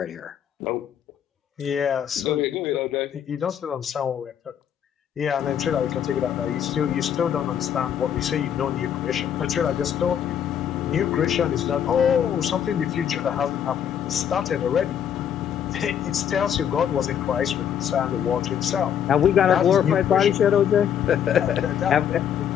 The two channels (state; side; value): quieter; right; 9.0 dB